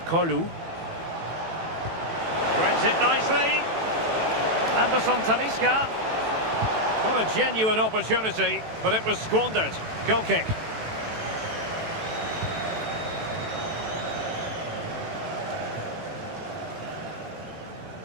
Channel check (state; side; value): late; left; 18 ms